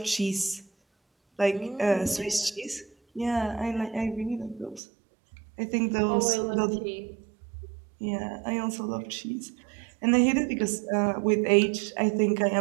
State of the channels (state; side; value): drops out; left; at 4.8 s